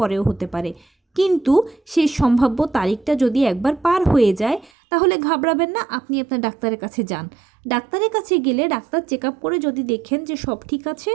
হতে পারে, কিন্তু সেই সম্ভাব্য তারিখটা যদি একবার পার হয়ে যায় তাহলে ঘাবড়াবেন না, আপনি আপনার ডাক্তারের কাছে যান। ডাক্তারের কাছে গেলে ডাক্তার চেক আপ করে যদি দেখেন যে সব ঠিক আছে,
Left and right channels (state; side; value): drops out; left; at 4.7 s